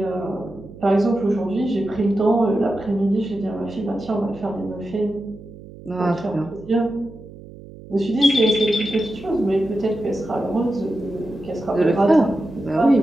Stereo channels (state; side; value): noise; right; hum, 17 dB below the sound